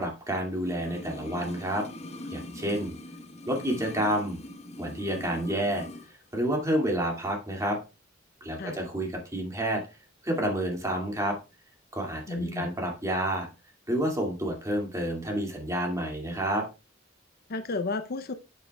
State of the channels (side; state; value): both; normal; correlation 0.44